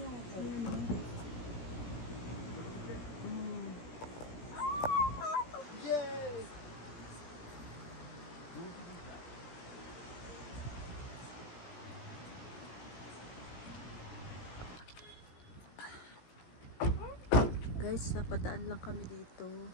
Guys, napadaan lang kami dito.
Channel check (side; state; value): right; late; 17 ms